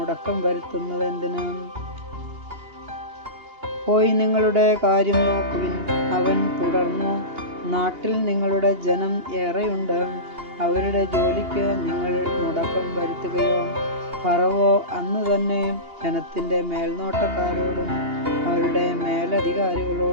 വരുത്തുന്നത് എന്തിന്? പോയി നിങ്ങളുടെ കാര്യം നോക്കുവിൻ. അവൻ തുടർന്നു, നാട്ടിൽ നിങ്ങളുടെ ജനം ഏറെയുണ്ട്. അവരുടെ ജോലിക്ക് നിങ്ങൾ മുടക്കം വരുത്തുകയോ? ഫറവോ അന്ന് തന്നെ ജനത്തിൻ്റെ മേൽനോട്ടക്കാരോടും അവരുടെ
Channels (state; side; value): late; left; 2.8 ms